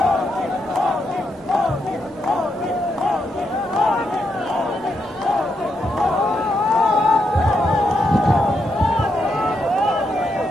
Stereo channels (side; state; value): both; normal; correlation 0.80